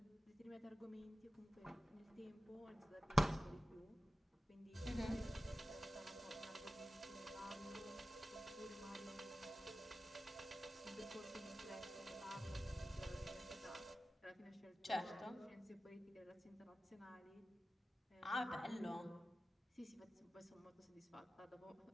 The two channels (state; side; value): normal; both; correlation 0.95